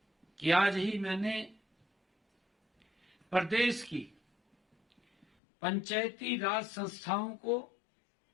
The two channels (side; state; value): right; drops out; at 5.2 s